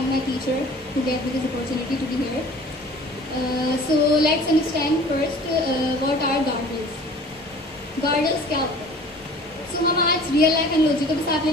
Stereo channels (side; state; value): both; normal; correlation 0.46